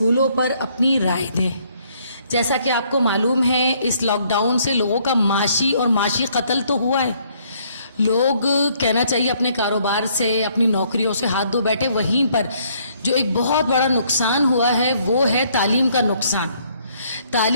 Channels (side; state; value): both; inverted; correlation -0.66